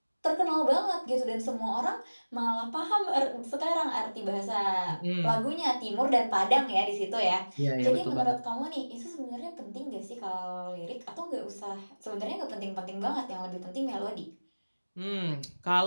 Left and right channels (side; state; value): both; inverted; correlation -1.00